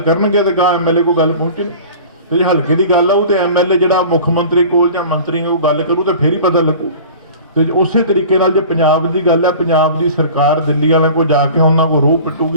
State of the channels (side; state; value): both; inverted; correlation -0.41